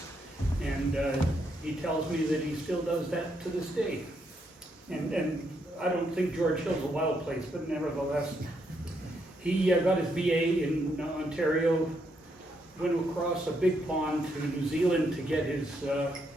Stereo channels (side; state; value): both; normal; correlation 0.77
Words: And he tells me that he still does that to this day. And I don't think George Hill's a wild place, but nevertheless, he got his BA in Ontario, went across a big pond to New Zealand to get his